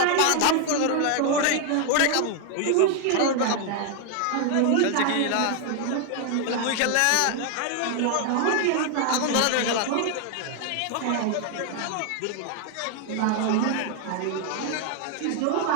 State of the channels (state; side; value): different; both; correlation 0.00